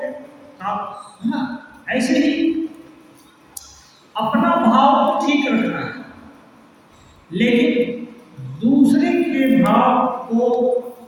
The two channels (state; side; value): identical; both; correlation 1.00